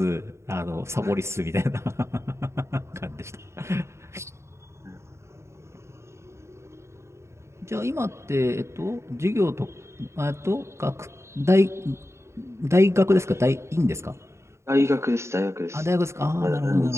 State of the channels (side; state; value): left; late; 0.13 ms